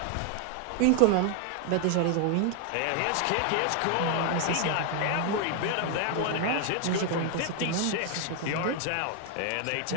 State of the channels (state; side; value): different; both; correlation 0.00